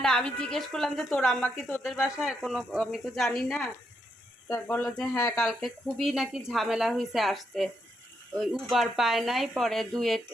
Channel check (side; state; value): both; normal; correlation 0.79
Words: না, আমি জিজ্ঞেস করলাম যে তোর আম্মা কি তোদের বাসায় কোনো, আমি তো জানি না। তা বললো যে হ্যাঁ কালকে খুবই নাকি ঝামেলা হয়েছে আসতে, ওই উবার পায় নাই, পরে